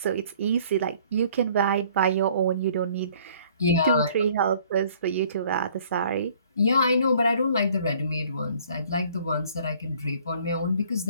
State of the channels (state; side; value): inverted; both; correlation -0.57